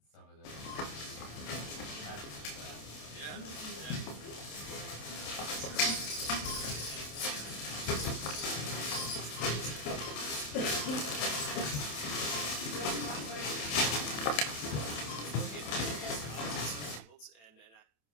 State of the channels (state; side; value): late; right; 27 ms